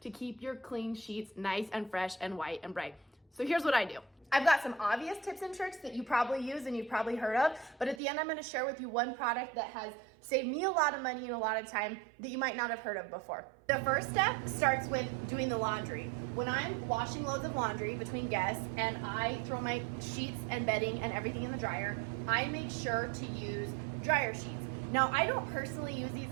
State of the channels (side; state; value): left; drops out; at 8.0 s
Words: to keep your clean sheets nice and fresh and white and bright. So here's what I do. I've got some obvious tips and tricks that you probably use and you've probably heard of, but at the end I'm gonna share with you one product that has saved me a lot of money and a lot of time that you might not have heard of before. The first step starts with doing the laundry. When I'm washing loads of laundry between guests and I throw my sheets and bedding and everything in the dryer, I make sure to use dryer sheets. Now, I don't personally use